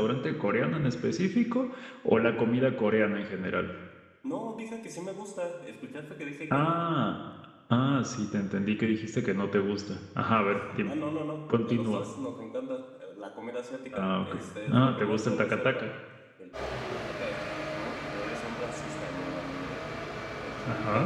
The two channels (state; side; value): identical; both; correlation 1.00